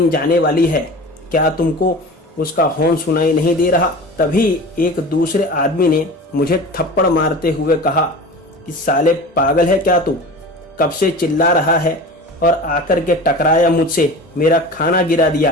जाने वाली है, क्या तुमको उसका हॉर्न सुनाई नहीं दे रहा। तभी एक दूसरे आदमी ने मुझे थप्पड़ मारते हुए कहा कि साले पागल है क्या तू, कब से चिल्ला रहा है और आकर के टकराया मुझसे, मेरा खाना गिरा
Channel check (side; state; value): both; normal; correlation 0.35